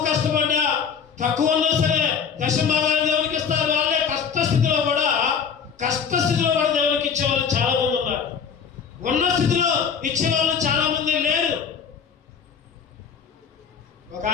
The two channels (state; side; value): quieter; right; 6.8 dB